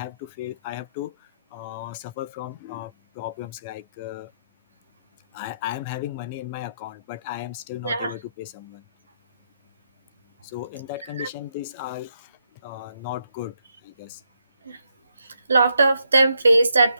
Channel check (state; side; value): inverted; both; correlation -0.78